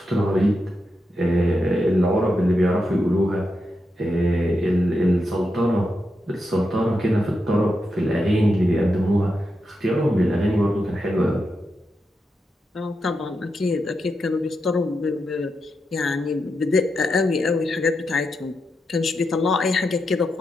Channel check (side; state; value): both; normal; correlation 0.86